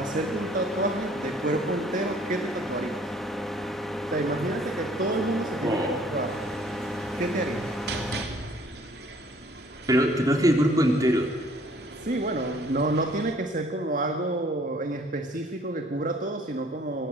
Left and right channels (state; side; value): normal; both; correlation 0.57